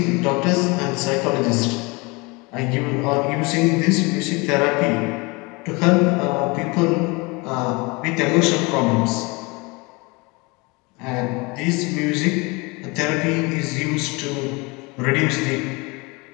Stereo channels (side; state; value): right; quieter; 26.7 dB